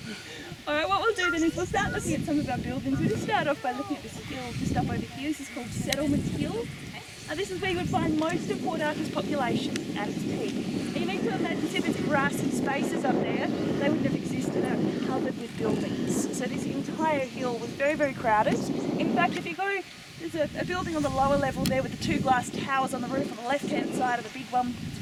Alright, what we'll do then is we'll start looking at some of our buildings. We'll just start off by looking at this hill just up over here. This is called Settlement Hill. This is where you would find most of Port Arthur's population at its peak. And you need to imagine, see these grassy spaces up there, they wouldn't have existed, they were covered with buildings. So this entire hill was very, very crowded. In fact, if you go, there's a building on the lower level there with the 2 glass towers on the roof on the left-hand side of the big one, it's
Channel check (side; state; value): both; identical; correlation 1.00